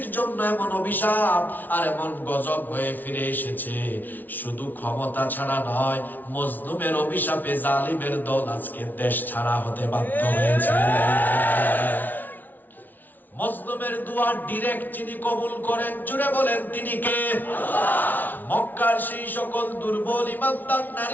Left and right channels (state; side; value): late; right; 0.084 ms